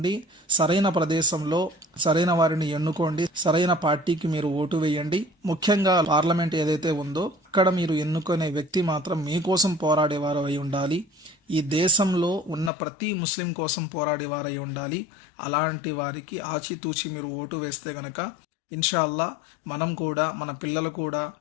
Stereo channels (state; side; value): drops out; right; at 12.7 s